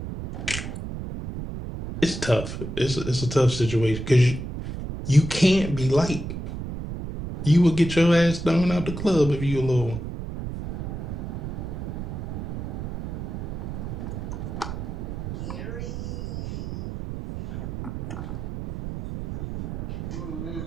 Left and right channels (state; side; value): noise; right; rumble, 6 dB below the sound